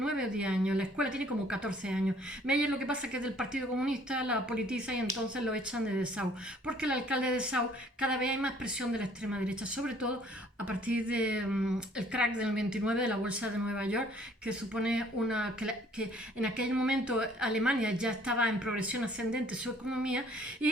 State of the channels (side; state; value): both; normal; correlation 0.58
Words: o 10 años, la escuela tiene como 14 años. Meyer, lo que pasa es que es del Partido Comunista, comunista la politiza y entonces lo echan de Dessau, porque el alcalde de Dessau cada vez hay más presión de la extrema derecha, sobre todo a partir del crack del 29 de la bolsa de Nueva York, que supone que en aquel momento Alemania ya estaba en progresión ascendente su economía